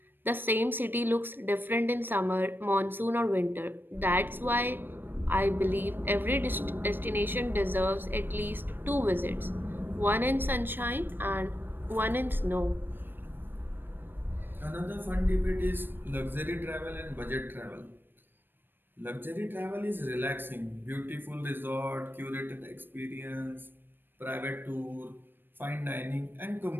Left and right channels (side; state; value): left; late; 0.096 ms